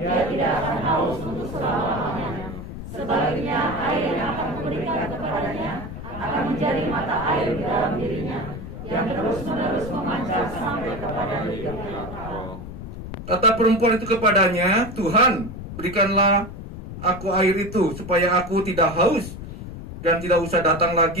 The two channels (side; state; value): left; noise; rumble, 10 dB below the sound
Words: tidak akan haus untuk selama-lamanya. Sebaliknya, air yang akan kuberikan kepadanya akan menjadi mata air di dalam dirinya, yang terus-menerus memancar sampai kepada hidup yang kekal." Kata perempuan itu kepadanya, "Tuhan, berikanlah aku air itu, supaya aku tidak haus dan tidak usah datang